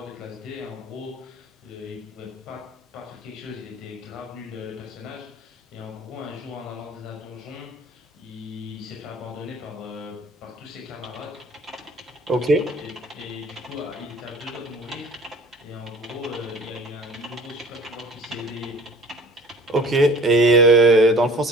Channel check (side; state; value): both; normal; correlation 0.47